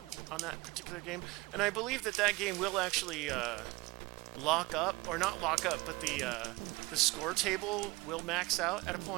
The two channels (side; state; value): left; quieter; 22.2 dB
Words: on that particular game. And I believe that game will actually lock up, or not lock up, but the score table will max out at a